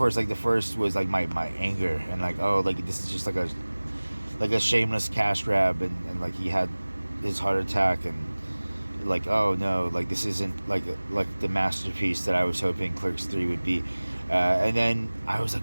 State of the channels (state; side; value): inverted; both; correlation -1.00